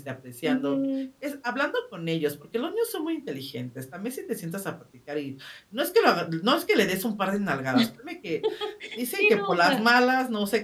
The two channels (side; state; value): both; identical; correlation 1.00